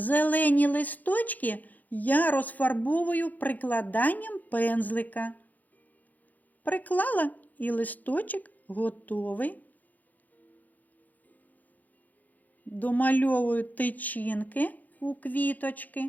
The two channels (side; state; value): right; late; 0.082 ms